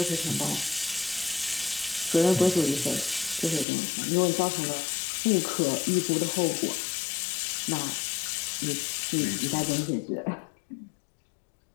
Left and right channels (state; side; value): drops out; right; at 3.7 s